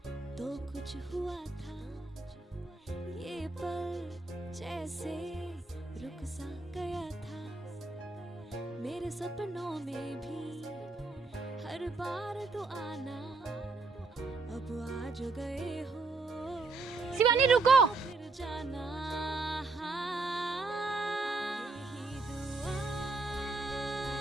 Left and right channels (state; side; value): quieter; left; 3.7 dB